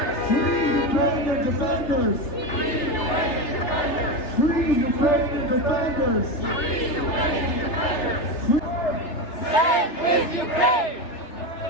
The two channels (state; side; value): late; right; 3.3 ms